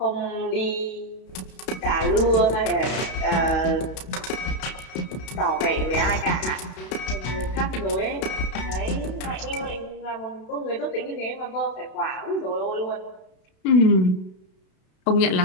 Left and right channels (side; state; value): right; late; 32 ms